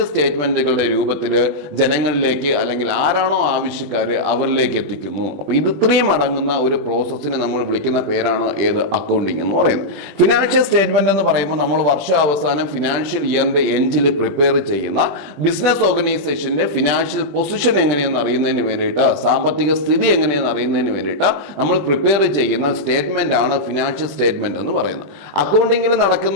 സ്റ്റേറ്റ്മെന്റുകളുടെ രൂപത്തിൽ ജനങ്ങളിലേക്ക് അല്ലെങ്കിൽ ആരാണോ ആവശ്യക്കാര് അവരിലേക്ക് എത്തിക്കുന്നു. അപ്പൊ ഇത് ഇത്രയും അടങ്ങുന്ന ഒരു പ്രോസസ്സിനെ നമ്മൾ വിളിക്കുന്ന പേരാണ് ഏത്, അക്കൗണ്ടിങ് എന്ന് പറയുന്നത്. ഫിനാൻഷ്യൽ സ്റ്റേറ്റ്മെന്റ് എന്ന് പറയുമ്പോൾ നമ്മൾ വർഷാവസാനം ഫിനാൻഷ്യൽ ഇയറിന്റെ എൻഡിൽ പ്രിപ്പയർ ചെയ്യുന്ന ബിസിനസ് ഓർഗനൈസേഷന്റെ ഫിനാൻഷ്യൽ പൊസിഷൻ എങ്ങനെയെന്ന് അറിയുന്നതിന് വേണ്ടിയിട്ട്, സാമ്പത്തിക സ്ഥിതി എങ്ങനെയെന്ന് അറിയുന്നതിന് വേണ്ടിയിട്ട് നമ്മൾ പ്രിപ്പയർ ചെയ്യുന്ന സ്റ്റേറ്റ്മെന്റ് ആണ് ഫിനാൻഷ്യൽ സ്റ്റേറ്റ്മെന്റ് എന്ന് പറയുന്നത്. അക്കൗണ്ടിങ്ങിൽ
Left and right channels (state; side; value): late; left; 20 ms